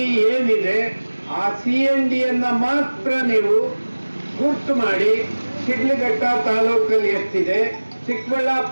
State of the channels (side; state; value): both; inverted; correlation -1.00